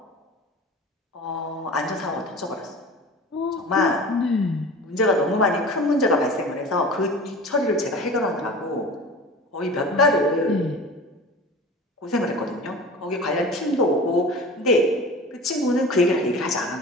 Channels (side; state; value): both; normal; correlation 0.37